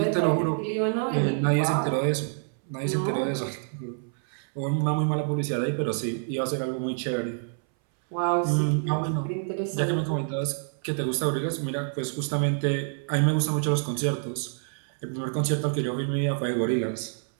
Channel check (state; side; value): silent; left; 60 dB below the other